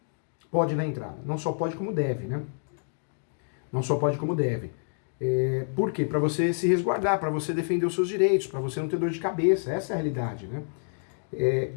Pode dar entrada. Não só pode como deve, né? Não só pode como deve. Por quê? Para você se resguardar, para você defender os seus direitos, para você não ter dor de cabeça. Essa é a realidade, né?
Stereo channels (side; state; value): right; silent; digital silence